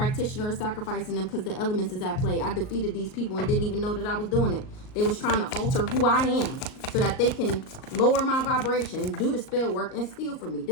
is sacrificing them because the elements is at play. I defeated these people and didn't even know that I was doing it. They was trying to alter who I am so that they can lower my vibration, do the spell work, and steal from me.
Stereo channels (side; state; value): right; late; 38 ms